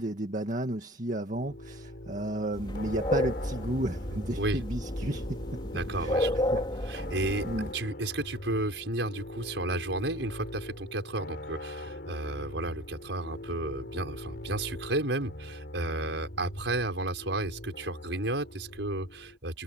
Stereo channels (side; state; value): both; normal; correlation 0.41